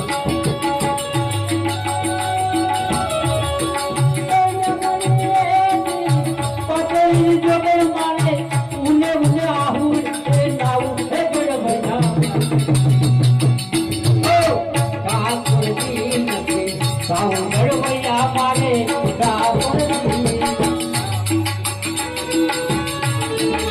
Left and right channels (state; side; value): identical; both; correlation 1.00